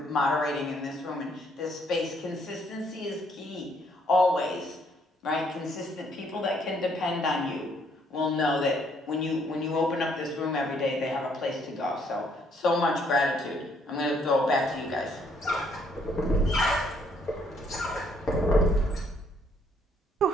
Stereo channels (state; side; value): normal; both; correlation 0.68